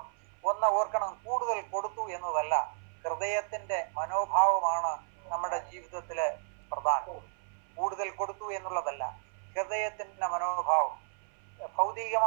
ഒന്ന് ഓർക്കണം, കൂടുതൽ കൊടുത്തു എന്നതല്ല, ഹൃദയത്തിന്റെ മനോഭാവമാണ് നമ്മുടെ ജീവിതത്തില് പ്രധാനം. കൂടുതൽ കൊടുത്തു എന്നുള്ളതല്ല, ഹൃദയത്തിന്റെ മനോഭാവം.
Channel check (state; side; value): silent; left; 56 dB below the other